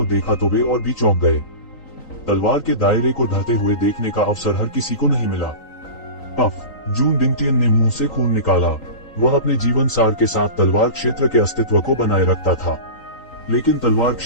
देखा तो वे और भी चौंक गए। तलवार के दायरे को ढहते हुए देखने का अवसर हर किसी को नहीं मिला। पफ, जून डिंगटियन ने मुंह से खून निकाला। वह अपने जीवन सार के साथ तलवार क्षेत्र के अस्तित्व को बनाए रखता था, लेकिन तलवार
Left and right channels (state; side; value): late; right; 3.9 ms